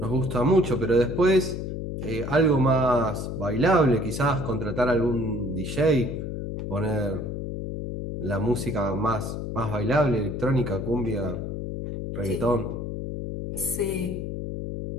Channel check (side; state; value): left; noise; hum, 5 dB below the sound